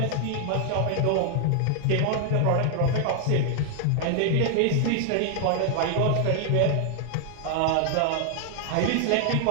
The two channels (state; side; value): different; both; correlation 0.00